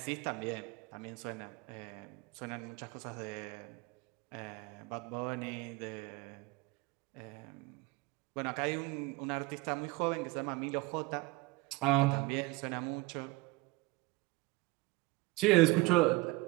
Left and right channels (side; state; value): left; quieter; 21.9 dB